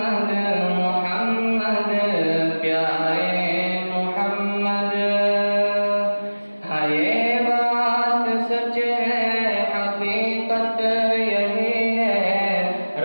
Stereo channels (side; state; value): both; inverted; correlation -1.00